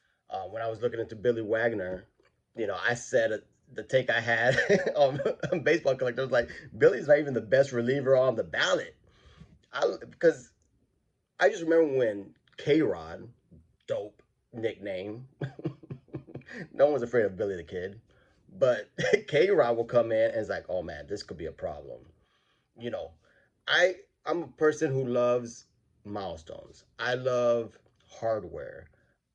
When I was looking into Billy Wagner, you know, I said the take I had on Baseball Collector was like, Billy's not even the best reliever on the ballot. Because I just remember when K-Rod, dope nickname, no one was afraid of Billy the Kid, but K-Rod will come in and it's like, oh man, this could be a problem. You know, I'm a person who loves milestones. I love hardware.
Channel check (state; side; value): identical; both; correlation 1.00